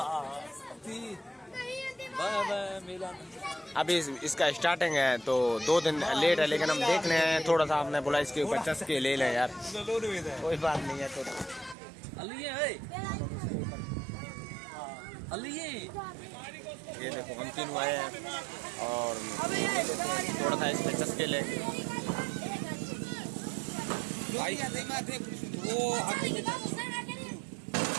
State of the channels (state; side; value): drops out; left; at 11.8 s